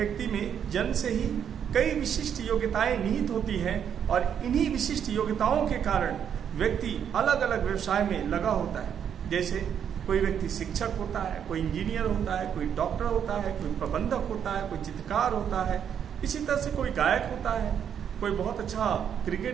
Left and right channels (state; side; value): quieter; left; 8.5 dB